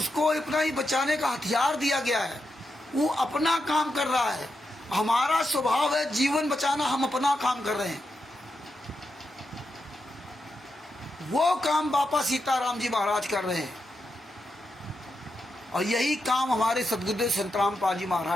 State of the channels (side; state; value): both; normal; correlation 0.86